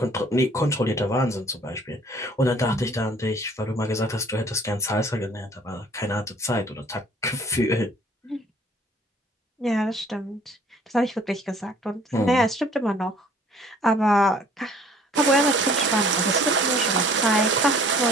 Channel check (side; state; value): both; normal; correlation 0.55